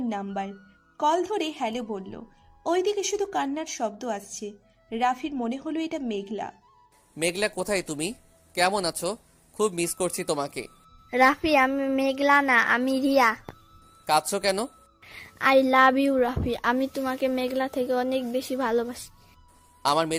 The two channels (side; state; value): both; identical; correlation 1.00